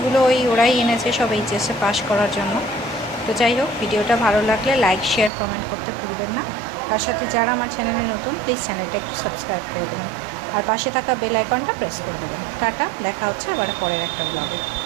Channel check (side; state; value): left; drops out; at 5.3 s